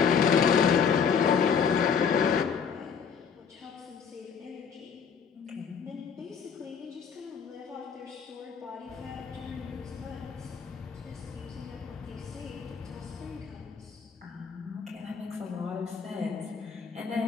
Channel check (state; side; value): quieter; right; 6.6 dB